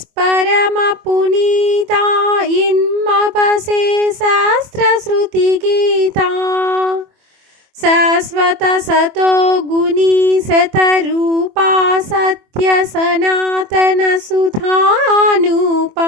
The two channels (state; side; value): late; left; 24 ms